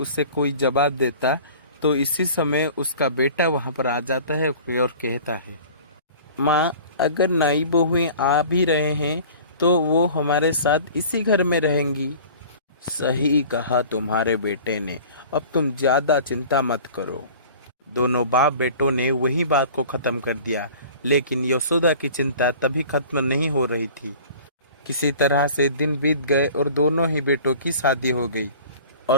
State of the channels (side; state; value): both; inverted; correlation -0.44